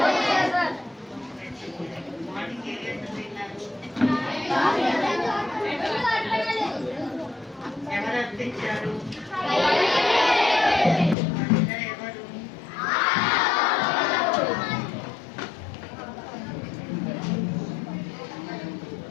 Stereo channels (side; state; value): right; drops out; at 11.2 s